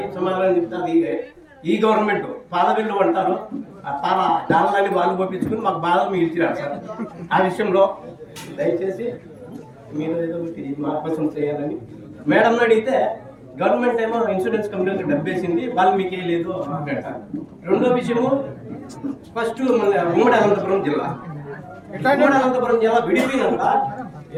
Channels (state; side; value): identical; both; correlation 1.00